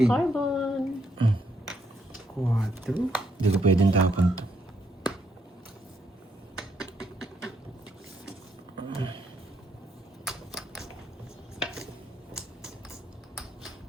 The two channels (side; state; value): both; normal; correlation 0.75